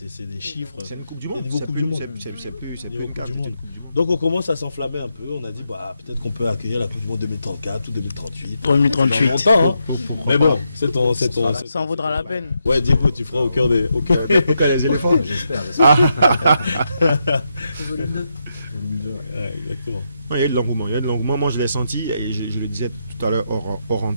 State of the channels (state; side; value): inverted; both; correlation -0.83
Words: des chiffres. C'est une Coupe du Monde. Niveau Coupe du Monde. C'est niveau Coupe du Monde. Donc, on commence à s'enflammer un peu. On a dit, peut-être qu'on peut accueillir la Coupe du Monde 2034 ou 2038. 2038. Longtemps, hein. Mais bon, c'est ton. Ça en vaudra la peine. Ouais, Diego, tu feras au cœur des éléphants. J'espère. Volume 2. Ouais, exactement. Il y a de l'engouement. Moi, je l'ai senti et je le disais tout à l'heure hors